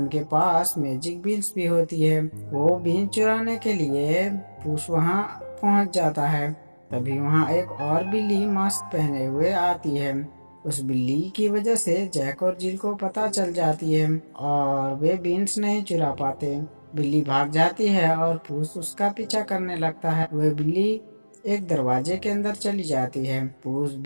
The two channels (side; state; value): both; inverted; correlation -1.00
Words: पास मैजिक बीन्स भी होती है। वो बीन चुराने के लिए पुश वहाँ पहुँच जाता है। तभी वहाँ एक और बिल्ली मास्क पहने हुए आती है। उस बिल्ली की वजह से जैक और जिल को पता चल जाती है और वे बीन्स नहीं चुरा पाते। बिल्ली भाग जाती है और पुश उसका पीछा करने लगता है। वह बिल्ली एक दरवाजे के अंदर चली जाती है। पुश